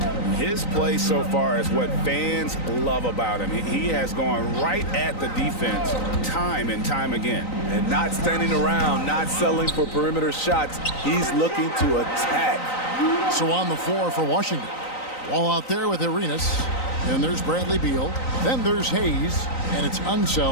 His play so far is what fans love about him. He has gone right at the defense time and time again. And not standing around, not settling for perimeter shots. He's looking to attack. So on the floor for Washington. Wall out there with Arenas. Then there's Bradley Beal. Then there's Hayes. And it's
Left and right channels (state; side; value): late; right; 3.9 ms